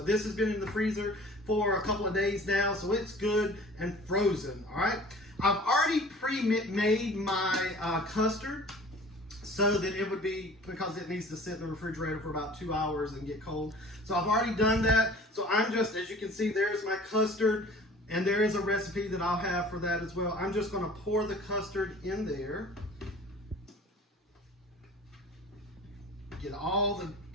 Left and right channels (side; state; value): both; normal; correlation 0.46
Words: this has been in the freezer for a couple of days now, so it's good and frozen, all right? I've already pre-made my custard so that it would be, because it needs to sit in the refrigerator for about 2 hours and get cold. So I've already done that. So I'm just, as you can see, there's my custard, and there is a recipe that I'll have for that as well. I'm just gonna pour the custard in there. Get all the